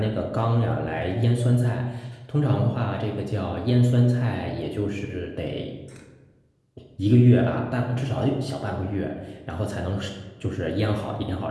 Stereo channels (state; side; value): identical; both; correlation 1.00